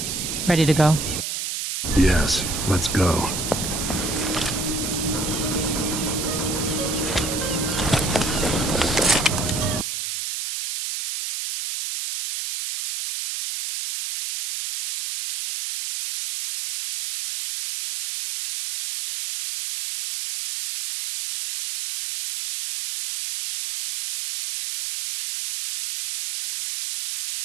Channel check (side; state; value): right; noise; hiss, 4 dB below the sound